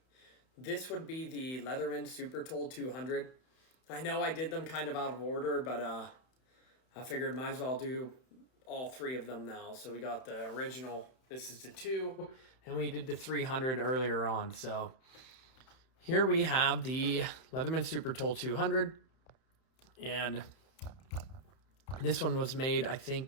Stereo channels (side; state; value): right; late; 31 ms